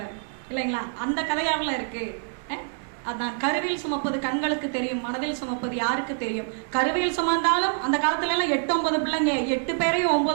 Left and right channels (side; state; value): left; silent; 61 dB below the other